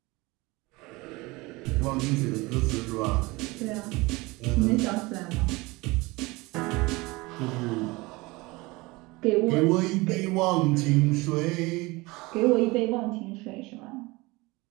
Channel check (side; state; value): left; quieter; 23.1 dB